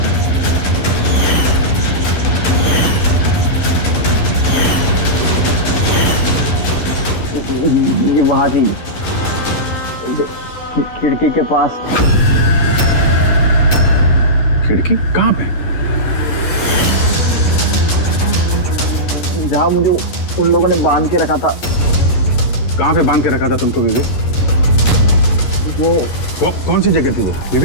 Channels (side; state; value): right; late; 11 ms